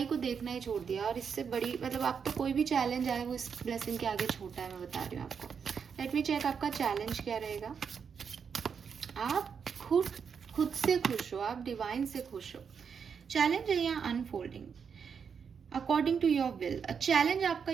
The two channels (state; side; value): quieter; left; 6.6 dB